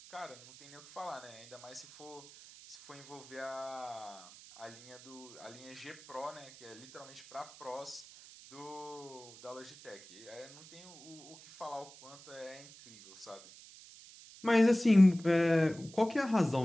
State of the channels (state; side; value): noise; right; hiss, 19 dB below the sound